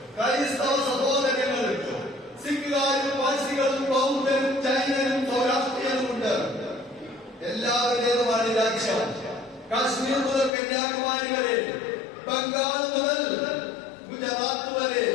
ക്രൈസ്തവ സഹോദരങ്ങളുണ്ട്, സിഖുകാരും പാഴ്സികളും ബൗദ്ധരും ജൈനരും സൗരാഷ്ട്രീയനുമുണ്ട്. എല്ലാവരുടേതുമാണ് രാജ്യം. കാശ്മീർ മുതൽ കന്യാകുമാരി വരെ, ബംഗാൾ മുതൽ ഗുജറാത്ത് വരെ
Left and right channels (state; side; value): drops out; right; at 10.5 s